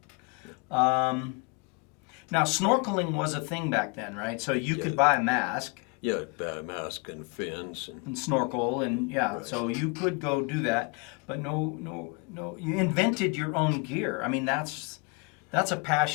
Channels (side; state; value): right; quieter; 31.9 dB